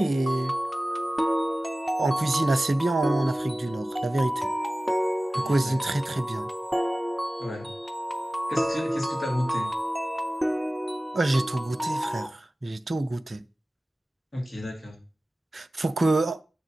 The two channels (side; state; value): both; normal; correlation 0.97